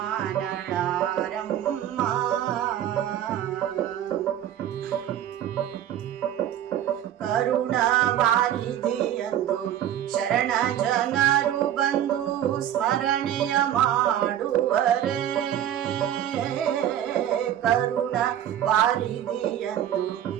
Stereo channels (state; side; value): quieter; left; 11.0 dB